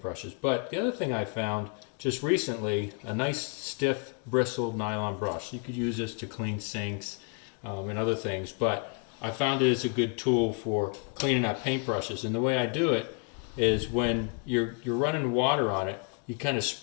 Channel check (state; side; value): quieter; right; 36.0 dB